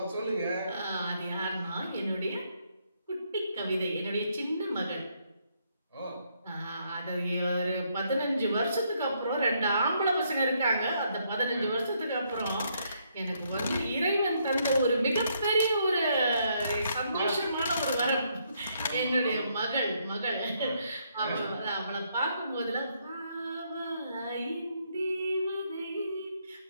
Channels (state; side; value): inverted; both; correlation -0.73